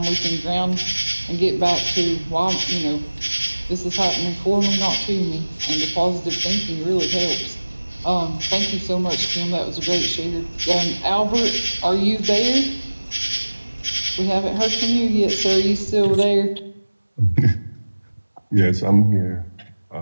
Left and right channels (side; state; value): both; inverted; correlation -1.00